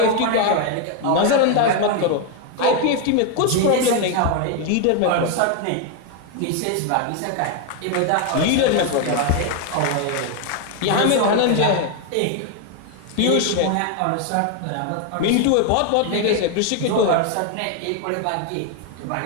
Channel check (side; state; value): both; different; correlation 0.01